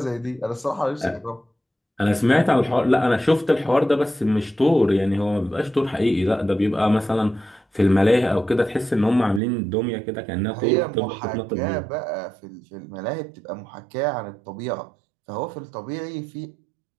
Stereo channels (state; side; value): drops out; left; at 9.4 s